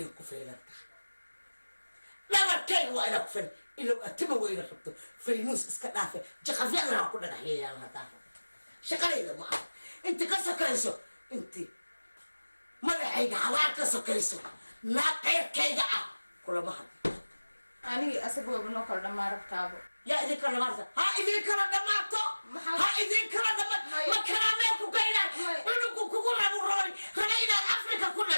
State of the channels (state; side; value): inverted; both; correlation -1.00